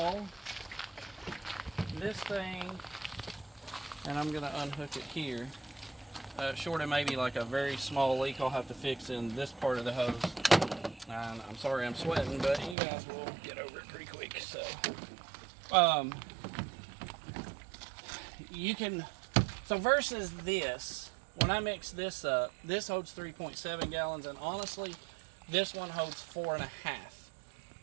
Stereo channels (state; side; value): drops out; left; at 12.8 s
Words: this thing, and I'm going to unhook it here, short of maybe like a very small leak I'll have to fix in this part of the hose. And I'm sorry I'm sweating, but you guys will get over it pretty quick. So, you can, so versus this, when I mix this up, this holds 3.7 gallons, and honestly, this one holds